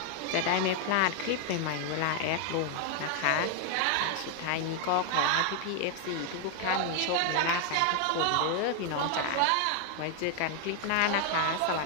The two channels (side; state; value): both; different; correlation 0.00